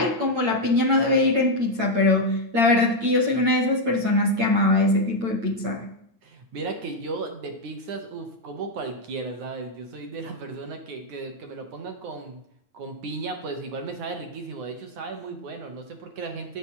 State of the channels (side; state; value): left; late; 8.8 ms